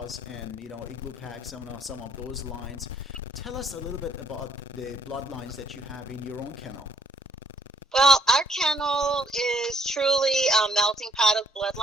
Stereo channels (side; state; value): both; normal; correlation 0.67